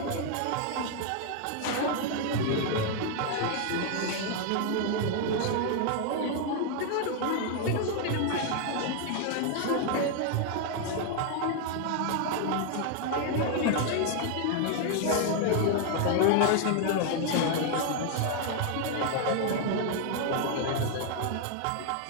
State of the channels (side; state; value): both; different; correlation 0.00